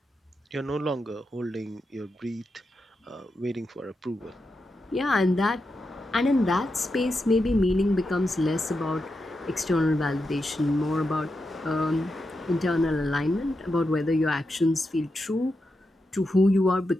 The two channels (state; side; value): normal; both; correlation 0.87